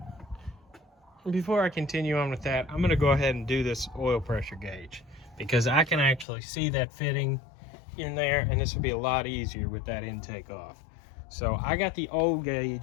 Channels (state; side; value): drops out; right; at 6.2 s